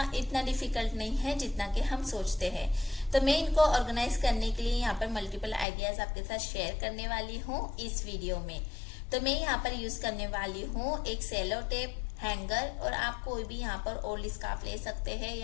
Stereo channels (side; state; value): right; drops out; at 5.7 s